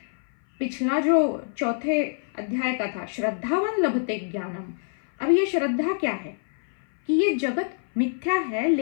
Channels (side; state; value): right; silent; 57 dB below the other